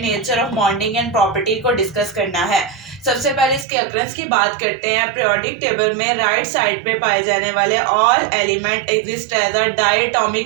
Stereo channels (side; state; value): left; drops out; at 3.7 s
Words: nature of bonding and property को डिस्कस करना है. सबसे पहले इसके अक्रंस की बात करते हैं. पीरियोडिक टेबल में राइट साइड पे पाए जाने वाले all element exist as a